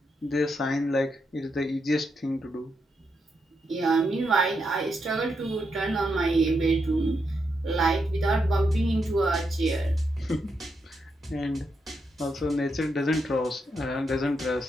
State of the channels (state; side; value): normal; both; correlation 0.82